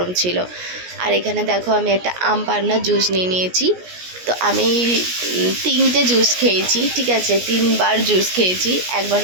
ছিল। আর এখানে দেখো আমি একটা আম পান্না জুস নিয়ে নিয়েছি। তো আমি 3টে জুস খেয়েছি, ঠিক আছে, 3বার জুস খেয়েছি। একবার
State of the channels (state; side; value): late; left; 17 ms